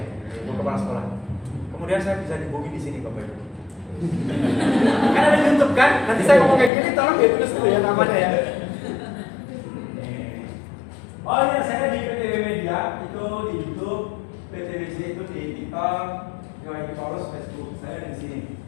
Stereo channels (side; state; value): right; drops out; at 6.7 s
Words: Ibu Kepala Sekolah. Kemudian saya bisa dihubungi di sini Bapak Ibu. Kan ada YouTube kan? Nanti saya ngomong kayak gini, tolong ya tulis dulu ya namanya ya. Oh iya, saya di PTW Media, itu di YouTube, PTWC itu di TikTok, Yohanes Paulus Facebook, saya di sini.